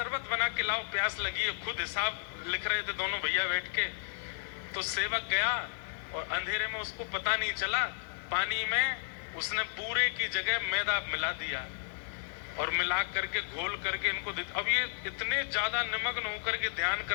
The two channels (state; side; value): silent; right; digital silence